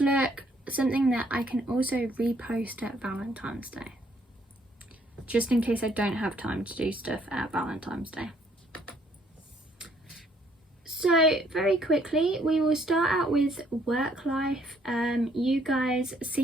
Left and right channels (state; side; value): normal; both; correlation 0.66